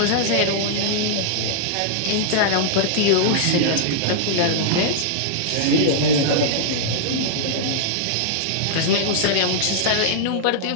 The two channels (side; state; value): both; different; correlation -0.01